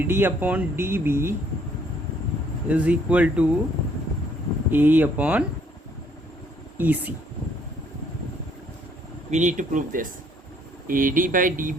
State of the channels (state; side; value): normal; both; correlation 0.65